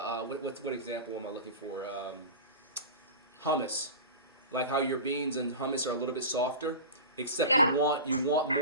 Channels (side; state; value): both; inverted; correlation -0.30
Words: example am I looking for? Hummus, like how your beans and hummus are a little bit softer, except you want